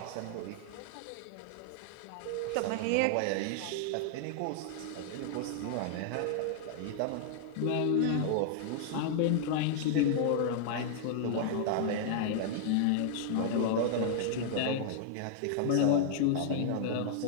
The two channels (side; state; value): both; different; correlation -0.01